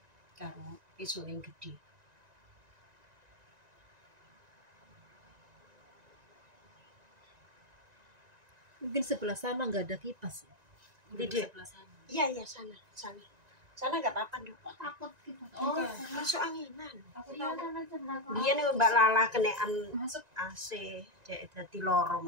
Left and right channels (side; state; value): left; late; 1.9 ms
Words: karo isu yang gede. Mungkin sebelah sana nggak ada kipas. Tidak. Iya, sana. Sana nggak apa-apa dong. Takut gitu. Masuk anginan. Aku tahu sana sebelah. Dia nih Mbak Lala kenean masuk AC, jadi lorong.